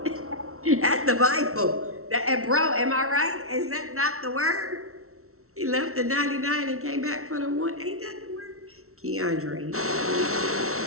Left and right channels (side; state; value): left; late; 0.63 ms